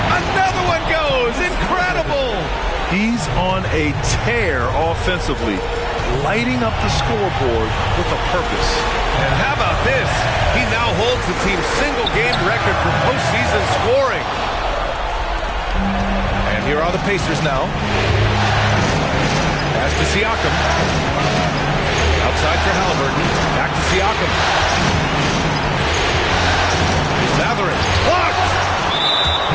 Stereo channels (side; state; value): both; identical; correlation 1.00